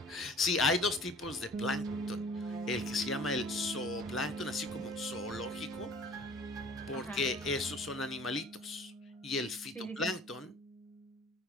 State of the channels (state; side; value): normal; both; correlation 0.48